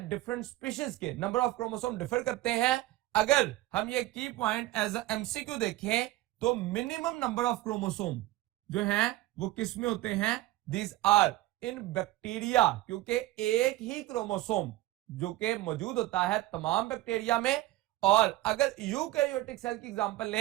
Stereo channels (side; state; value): left; quieter; 16.9 dB